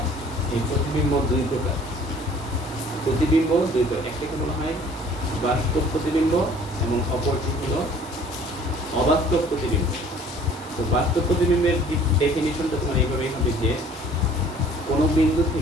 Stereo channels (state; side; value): normal; both; correlation 0.53